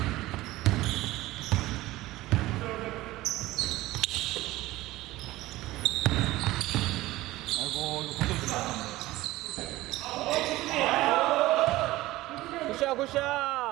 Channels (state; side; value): quieter; left; 17.7 dB